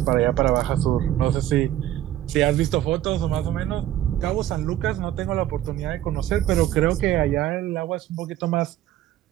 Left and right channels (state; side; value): quieter; left; 12.8 dB